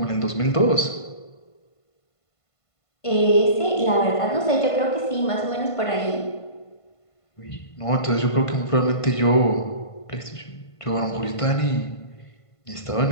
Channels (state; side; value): late; right; 1.5 ms